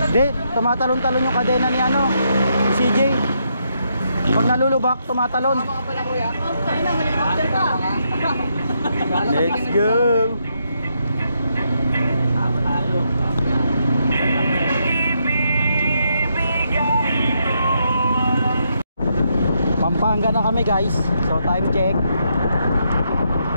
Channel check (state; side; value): inverted; both; correlation -0.78